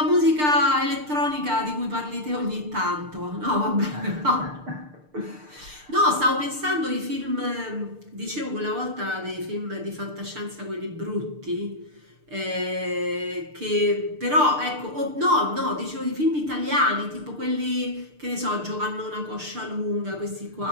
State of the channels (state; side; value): late; left; 6.6 ms